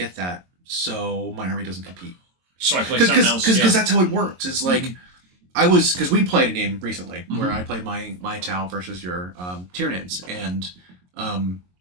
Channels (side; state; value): left; late; 22 ms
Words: that, so my army doesn't compete. So I play something else. Because that's how it works. It's like, because we played a game recently where I played my Tau versus your Tyranids, and